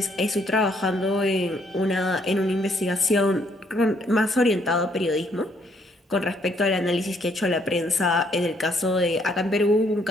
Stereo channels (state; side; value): normal; both; correlation 0.69